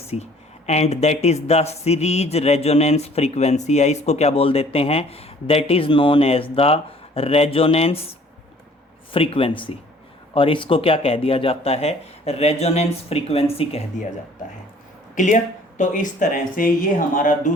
And that is the series resonance frequency, या इसको क्या बोल देते हैं? That is known as the resonance frequency. और इसको क्या कह दिया जाता है? रेजोनेंस फ्रीक्वेंसी कह दिया जाता है। क्लियर? तो इस तरह से ये हमारा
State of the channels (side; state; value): both; normal; correlation 0.55